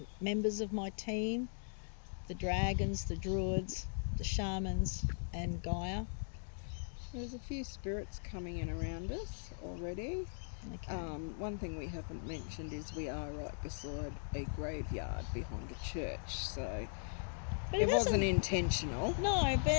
members of my team, the dragons, the druids, the shamans, and Gaia. There's a few spirits coming in around us already. Okay. One thing we haven't mentioned is we are right beside a graveyard behind a church, so it wasn't intentional. No,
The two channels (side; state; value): right; silent; digital silence